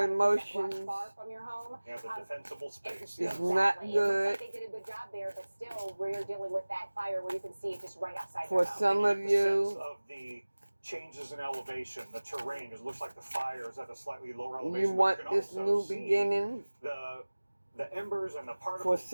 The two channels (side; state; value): both; inverted; correlation -1.00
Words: to keep that brush emotions far from your home. Yeah, the defensible space. It's Yeah. not Exactly. It good. looks like they did a good job there, but still, we're dealing with that fire where you can see it just right outside For your home. some of You get the sense you, of the changes in elevation, the terrain. It looks like the fire is at a slightly lower elevation. you but want can this also new see beginning. The embers and the For particles.